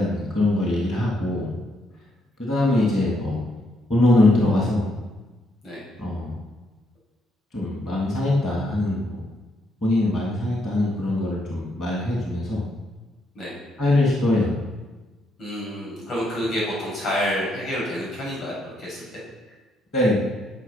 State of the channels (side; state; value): both; normal; correlation 0.76